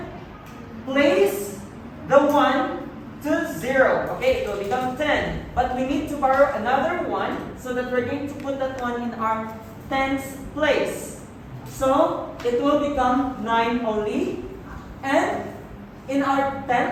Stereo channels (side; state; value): both; identical; correlation 1.00